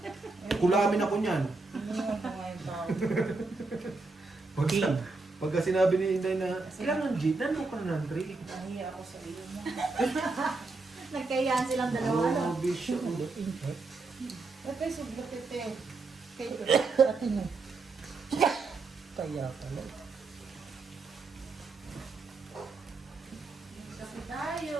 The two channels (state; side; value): quieter; left; 3.7 dB